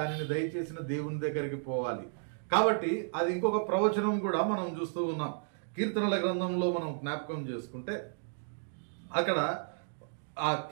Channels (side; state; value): left; silent; digital silence